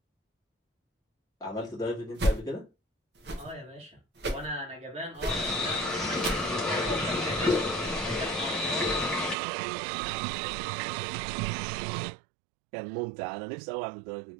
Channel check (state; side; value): drops out; left; at 9.3 s